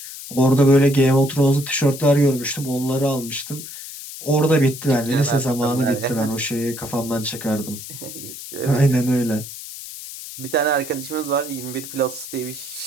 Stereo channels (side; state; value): left; noise; hiss, 12 dB below the sound